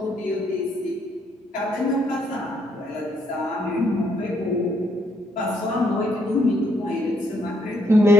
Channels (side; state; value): both; normal; correlation 0.72